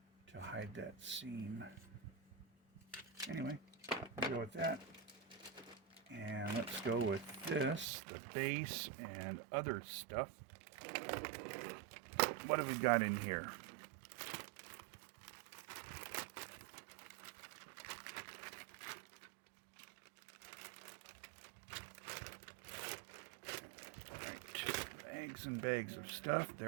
hide that seam. Anyway, we'll go with that. And let's go with this, the base and other stuff. What have we got in here? Bags and bags of stuff.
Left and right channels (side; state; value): left; drops out; at 7.9 s